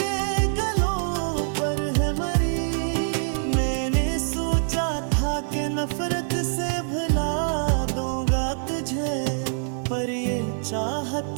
गलों पर है मरी। मैंने सोचा था कि नफरत से भुला दूंगा तुझे, पर ये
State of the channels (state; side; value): silent; left; digital silence